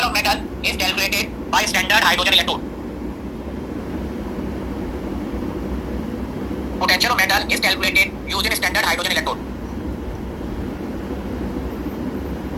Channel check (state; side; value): identical; both; correlation 1.00